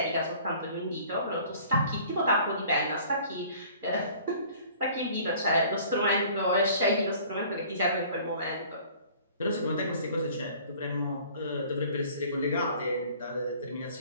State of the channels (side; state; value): both; inverted; correlation -0.51